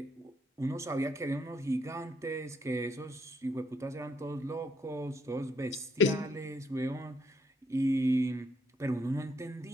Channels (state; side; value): normal; both; correlation 0.72